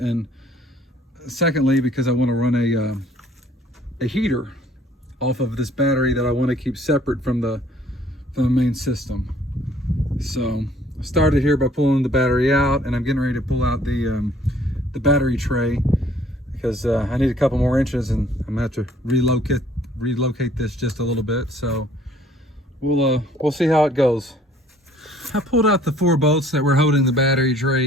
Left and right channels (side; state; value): both; normal; correlation 0.58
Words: secondly, because I want to run a heater off of this battery that I want to keep separate from the main system. So I started here by pulling the battery out, and I'm getting ready to pull out the battery tray because I need a couple more inches, and I'm gonna have to relocate this just a little bit. So we'll see how it goes. I pulled out the 4 bolts that were holding the battery